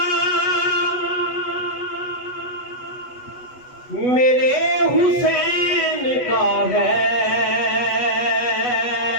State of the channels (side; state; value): right; late; 8.1 ms